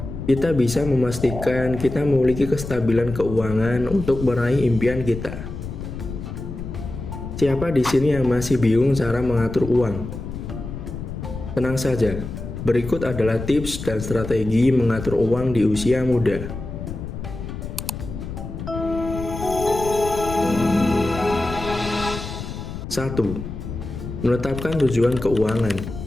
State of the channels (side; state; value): left; noise; rumble, 8 dB below the sound